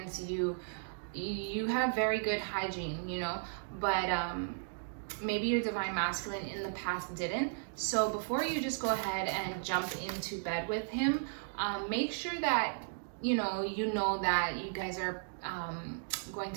You have very good hygiene, you know, but maybe your divine masculine in the past didn't. So before you just go ahead and jump into bed with him, make sure that you know that you guys are going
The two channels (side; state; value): left; silent; digital silence